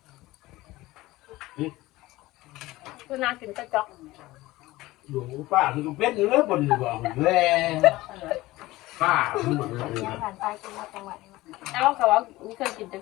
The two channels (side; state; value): right; quieter; 18.4 dB